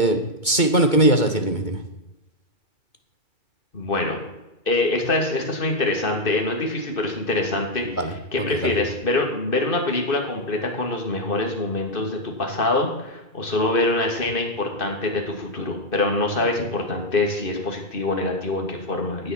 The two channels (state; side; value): late; right; 2.2 ms